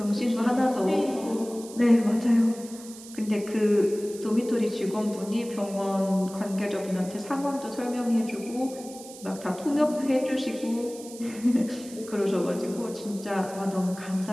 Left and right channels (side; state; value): right; noise; hiss, 17 dB below the sound